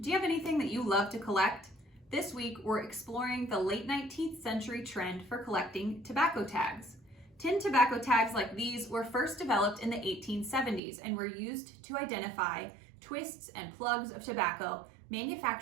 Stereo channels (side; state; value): left; drops out; at 10.8 s